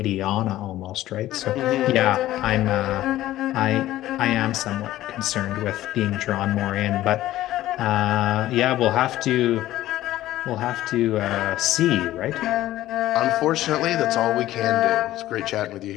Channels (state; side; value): quieter; right; 14.7 dB